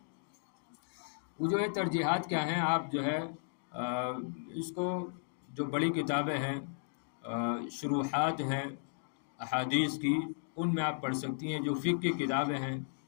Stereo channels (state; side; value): silent; right; digital silence